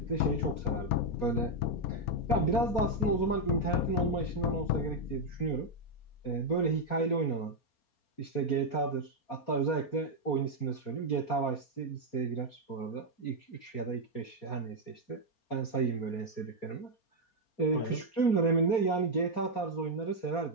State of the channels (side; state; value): right; late; 4.3 ms